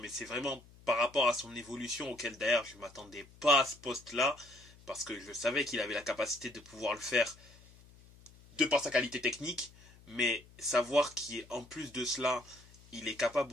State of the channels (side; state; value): left; noise; hum, 24 dB below the sound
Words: mais c'est vraiment par rapport à son évolution auquel d'ailleurs je m'attendais pas à ce poste-là parce que je savais qu'il avait la capacité de pouvoir le faire de par sa qualité technique, mais savoir qu'en plus de cela, il est